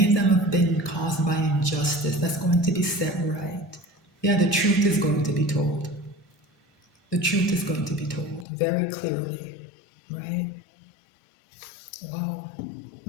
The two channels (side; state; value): right; drops out; at 8.5 s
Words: of them have been caused by injustice, that's going to be set right. Yeah, the truth is going to be told. The truth is going to be told very clearly, right? Wow.